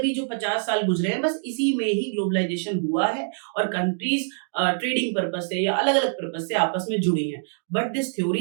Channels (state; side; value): silent; left; digital silence